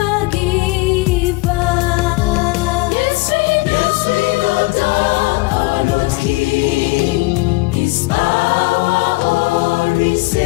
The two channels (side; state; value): right; quieter; 23.4 dB